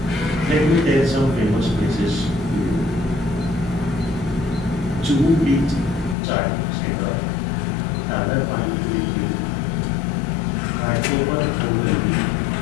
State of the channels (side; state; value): right; drops out; at 6.2 s